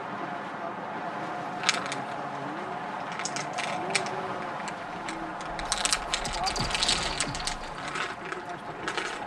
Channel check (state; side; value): identical; both; correlation 1.00